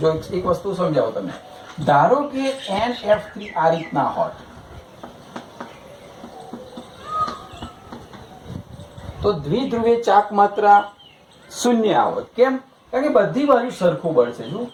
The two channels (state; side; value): identical; both; correlation 1.00